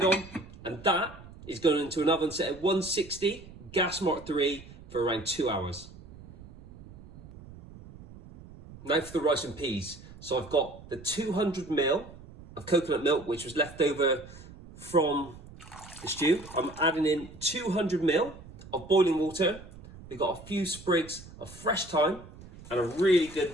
on, and that is going into an oven set at 160, gas mark 3 for around 2 hours. Now for the rice and peas. So I've got the 200 ml of coconut milk, which was left over from the stew. I'm adding in 200 ml of boiling water. We've got a few sprigs of fresh thyme and a really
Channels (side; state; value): right; noise; rumble, 18 dB below the sound